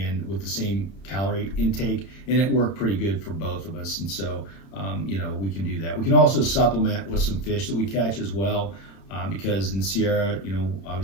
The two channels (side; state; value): right; late; 31 ms